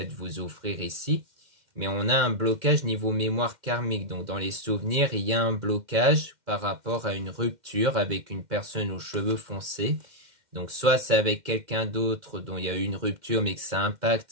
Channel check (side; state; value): left; late; 2.1 ms